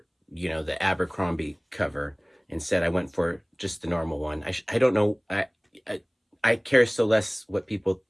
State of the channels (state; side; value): identical; both; correlation 1.00